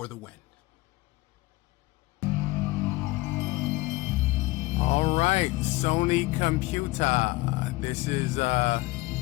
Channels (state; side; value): quieter; right; 20.5 dB